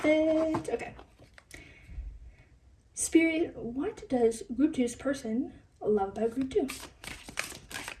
it. Okay. Spirit, what does Group 2's person love about Group 2?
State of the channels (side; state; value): both; identical; correlation 1.00